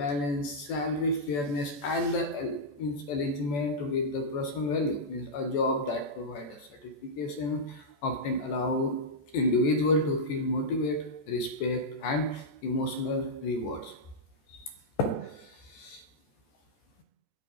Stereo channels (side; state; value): right; late; 14 ms